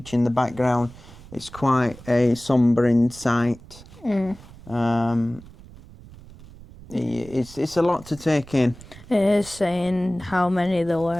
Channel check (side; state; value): right; noise; rumble, 19 dB below the sound